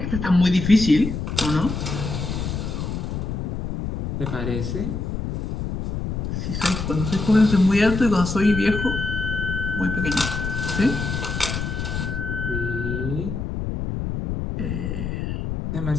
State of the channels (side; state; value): left; noise; rumble, 3 dB below the sound